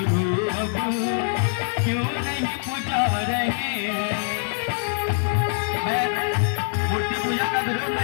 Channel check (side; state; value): right; silent; 63 dB below the other